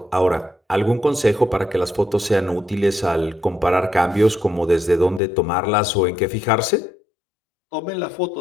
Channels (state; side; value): drops out; right; at 5.2 s